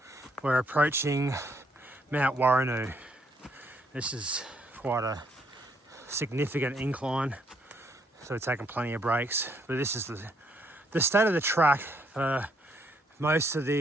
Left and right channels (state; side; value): normal; both; correlation 0.71